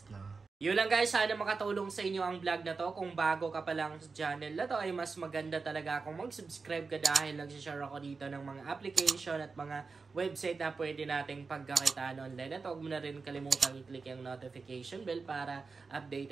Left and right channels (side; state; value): left; quieter; 4.5 dB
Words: no? Yun lang guys, sana makatulong sa inyo ang vlog na to. Kung bago ka pa lang sa channel na to, ay mas maganda talaga kung mag-subscribe ka dahil nagsishare ako dito ng mga application at mga website na pwede nating pagkakitaan online. At huwag mo na rin kalimutan i-click yung notification bell para